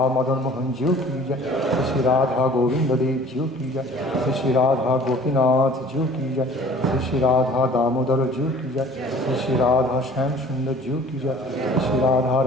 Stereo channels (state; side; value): normal; both; correlation 0.48